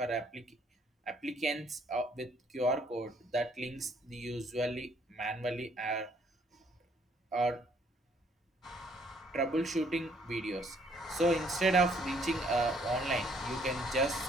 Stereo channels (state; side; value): normal; both; correlation 0.65